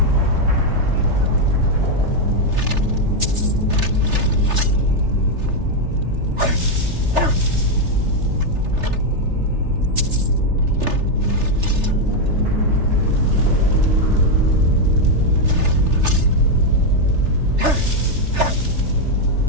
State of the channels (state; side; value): late; left; 3.3 ms